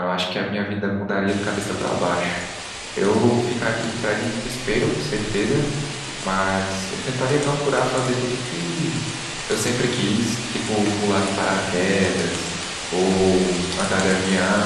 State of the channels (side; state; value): both; identical; correlation 1.00